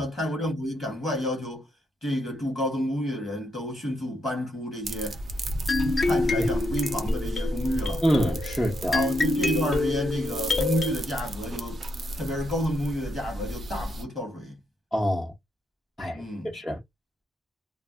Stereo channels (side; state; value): both; normal; correlation 0.79